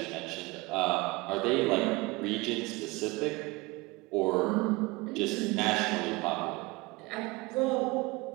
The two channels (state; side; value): quieter; left; 23.5 dB